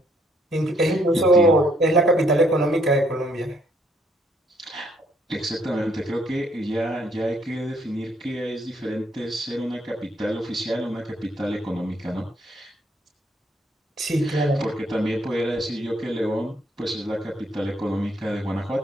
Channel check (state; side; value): normal; both; correlation 0.68